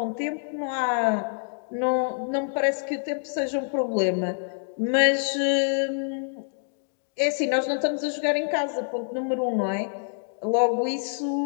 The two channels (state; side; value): silent; right; digital silence